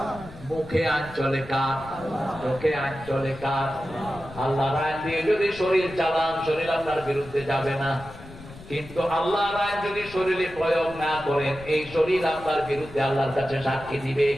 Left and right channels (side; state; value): left; noise; rumble, 17 dB below the sound